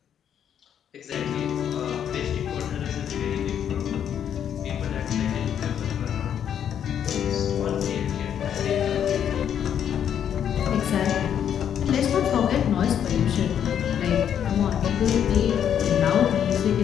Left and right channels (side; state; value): right; quieter; 9.1 dB